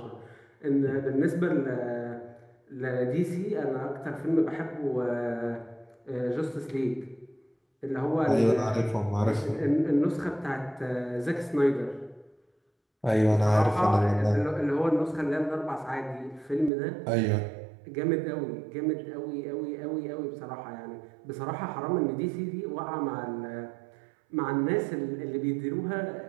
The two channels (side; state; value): left; drops out; at 16.7 s